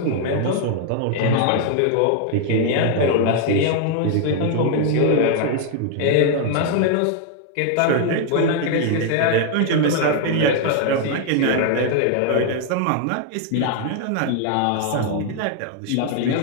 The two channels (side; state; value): both; different; correlation 0.00